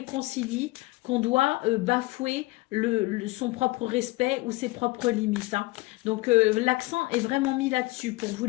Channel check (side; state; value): right; quieter; 21.5 dB